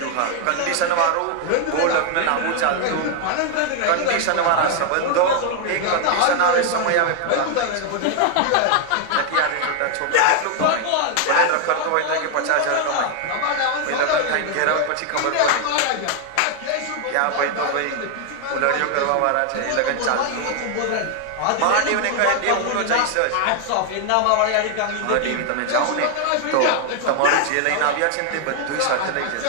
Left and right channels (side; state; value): both; different; correlation 0.00